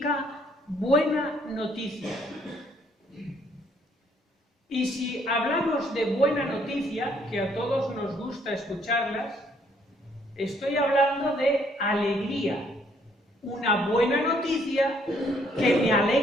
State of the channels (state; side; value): normal; both; correlation 0.66